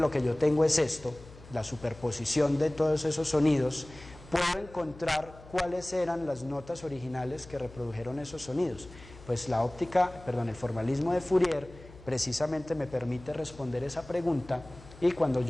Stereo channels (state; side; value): noise; left; hum, 19 dB below the sound